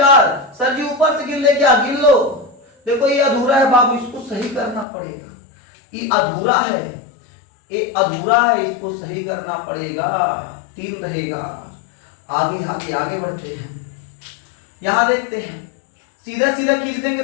सर जी ऊपर से गिन ले क्या? गिन लो। देखो ये अधूरा है बाबू, इसको सही करना पड़ेगा, ये अधूरा है, ये अधूरा है, इसको सही करना पड़ेगा, 3 रहेगा। आगे आगे आगे बढ़ते हैं, यहां देखते हैं, सीधा सीधा खींच देंगे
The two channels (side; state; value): right; drops out; at 4.9 s